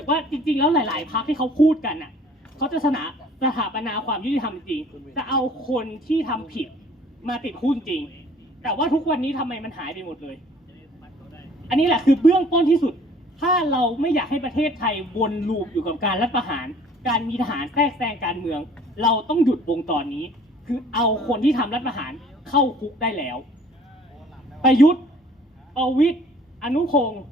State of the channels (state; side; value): normal; both; correlation 0.54